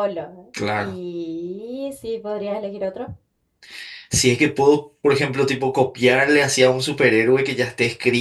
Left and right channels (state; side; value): identical; both; correlation 1.00